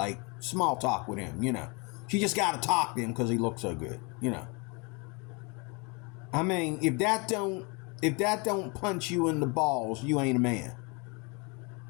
small talk with him, She just got to talk to him because he looks so good, I mean, if that don't punch you in the balls, you ain't a man.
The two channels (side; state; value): right; quieter; 30.5 dB